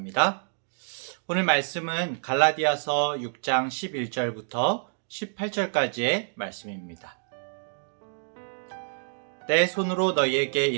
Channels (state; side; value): silent; left; digital silence